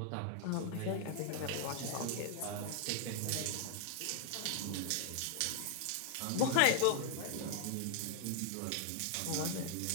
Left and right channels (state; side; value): different; both; correlation 0.00